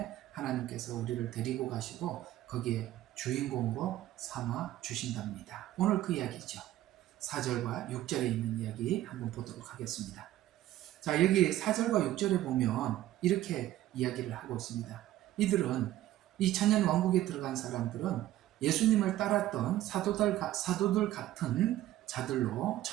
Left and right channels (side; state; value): left; quieter; 14.2 dB